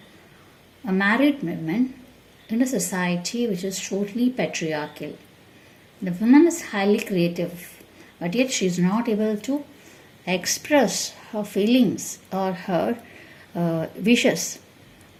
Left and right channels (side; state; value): both; identical; correlation 1.00